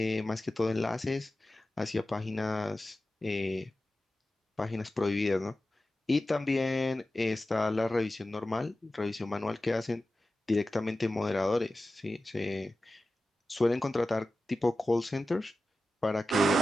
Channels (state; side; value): normal; both; correlation 0.94